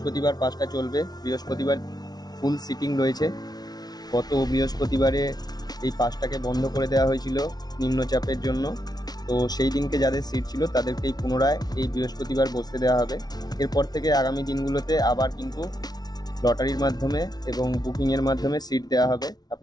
5টা চলবে, বৃহস্পতিবার ফুল সিটিং রয়েছে। গত বৃহস্পতিবারে এই 5টাকে বন্ধ করে দেওয়া হয়েছিল নিম্নচাপের জন্য। তো সেই দিনকে যাদের সিট ছিল তাদেরকেই পুনরায় এই বৃহস্পতিবার বসতে দেওয়া হবে। এরপর থেকে আগামী দিনগুলোতে আবার কিন্তু লটারির মাধ্যমে এবং বুকিংয়ের মাধ্যমে সিট দেওয়া হবে।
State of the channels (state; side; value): late; right; 0.19 ms